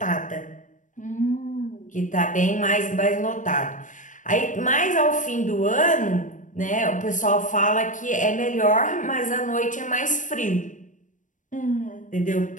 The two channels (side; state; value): right; late; 0.37 ms